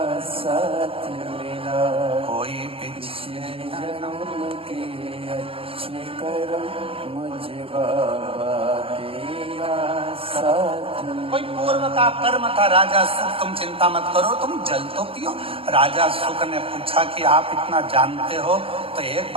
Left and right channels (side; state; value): left; late; 0.27 ms